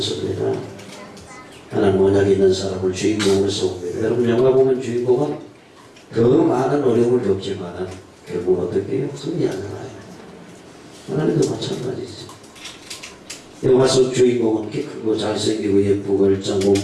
하나님 언약이 있는 사람을 주인공으로 세웁니다. 여러분 영화 보면 주인공은 더 많은 어려움을 겪지만 결국 어떻게 해요? 승리하잖아요. 하나님도 마찬가지죠. 영화 속 주인공은 키 크고 잘생기고 예쁘고 일장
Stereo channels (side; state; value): both; identical; correlation 1.00